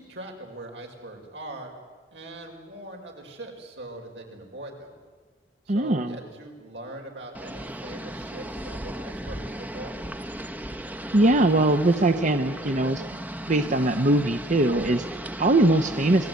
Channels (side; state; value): both; normal; correlation 0.55